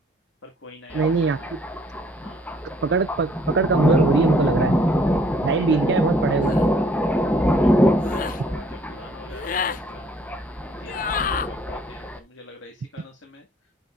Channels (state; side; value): normal; both; correlation 0.61